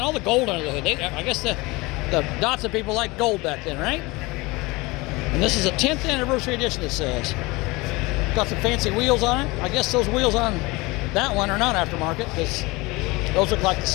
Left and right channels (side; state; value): right; quieter; 23.3 dB